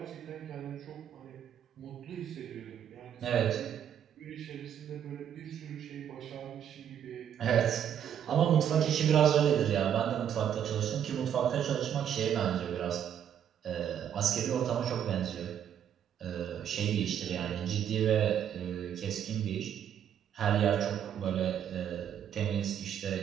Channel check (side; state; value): left; quieter; 9.3 dB